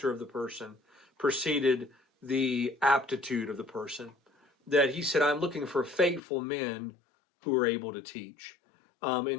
of the person preceded the aptitude of the person. That he said, I'm looking for faithful men who are able to teach.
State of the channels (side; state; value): right; drops out; at 6.2 s